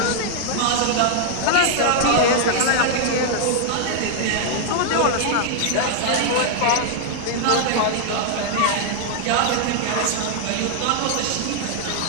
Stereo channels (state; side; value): different; both; correlation 0.00